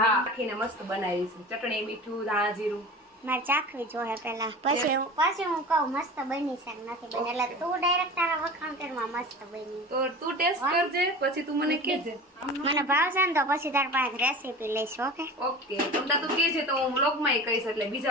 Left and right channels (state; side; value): normal; both; correlation 0.35